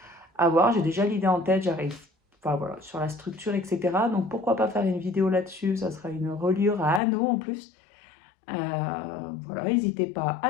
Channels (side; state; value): right; drops out; at 7.0 s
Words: À voir, j'ai déjà l'idée en tête, j'arrive voilà, sur la structure, etc. Donc pourquoi pas faire une vidéo là-dessus, ça sera une reliure à anneaux en plus. Voilà, n'hésitez pas